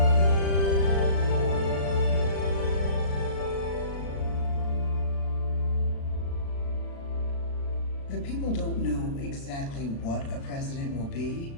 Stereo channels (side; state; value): right; late; 36 ms